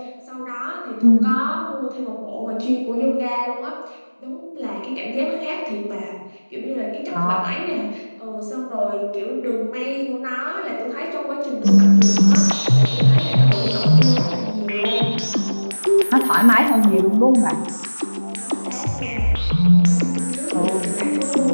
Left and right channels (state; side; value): inverted; both; correlation -1.00